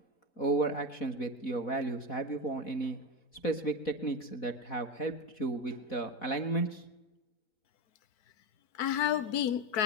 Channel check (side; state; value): right; late; 4.6 ms